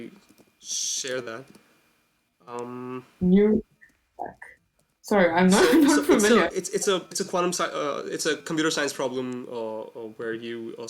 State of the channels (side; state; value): both; identical; correlation 1.00